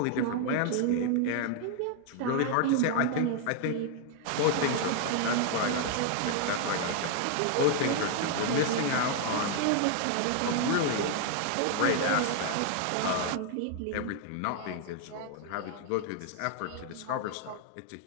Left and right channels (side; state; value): both; different; correlation 0.00